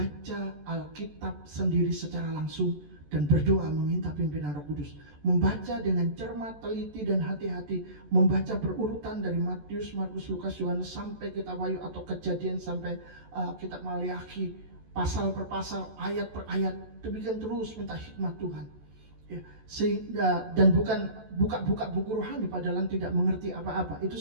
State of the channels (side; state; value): left; late; 14 ms